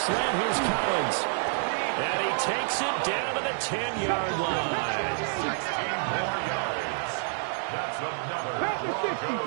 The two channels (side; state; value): left; silent; digital silence